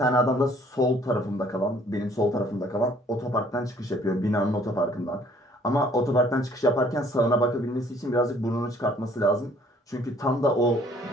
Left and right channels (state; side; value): normal; both; correlation 0.59